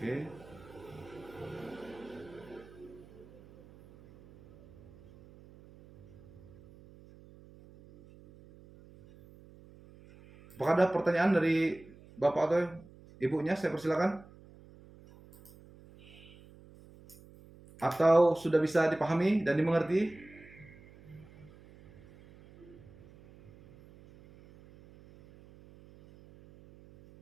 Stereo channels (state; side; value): noise; right; hum, 22 dB below the sound